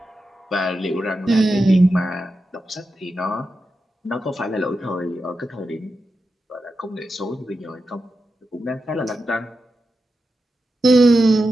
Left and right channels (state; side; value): normal; both; correlation 0.90